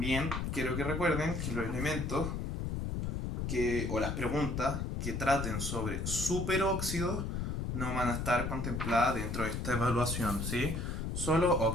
quiero que recuerden que los elementos o las preguntas que traten sobre superóxidos no van a estar contempladas dentro de esta evaluación, ¿sí? Solo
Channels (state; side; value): noise; left; rumble, 2 dB below the sound